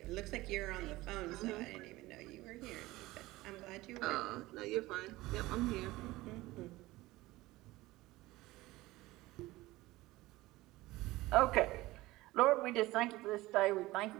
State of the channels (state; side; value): quieter; left; 18.9 dB